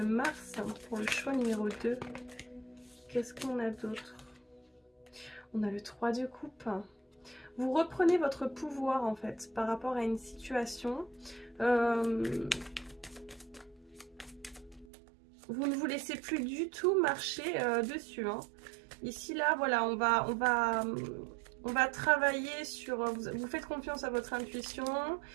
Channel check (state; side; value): drops out; left; at 14.9 s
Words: pour le choix numéro 2. Qu'est-ce qu'on a d'autre? On a le 3 de coupe. Vous reprenez votre pouvoir en fait par rapport à une situation. Vous ne vous laissez plus du tout marcher dessus. Ici là, voilà, on va travailler sur... Vous faites confiance à votre intuition,